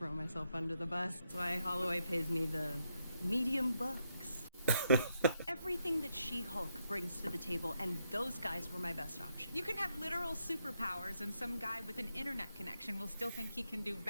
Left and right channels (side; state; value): both; inverted; correlation -0.80